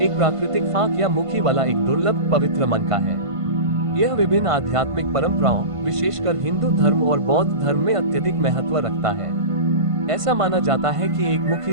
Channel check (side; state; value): left; late; 1.5 ms